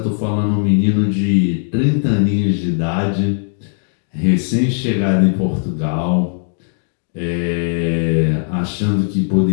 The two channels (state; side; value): silent; right; 62 dB below the other